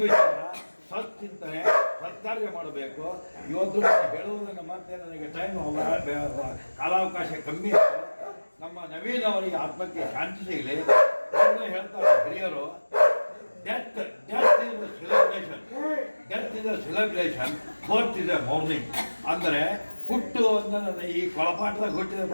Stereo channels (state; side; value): inverted; both; correlation -1.00